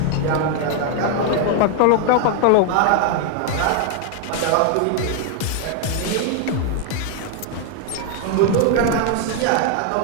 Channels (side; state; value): both; different; correlation 0.00